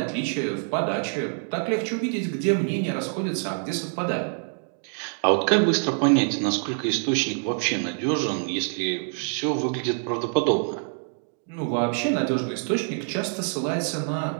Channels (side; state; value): left; silent; 55 dB below the other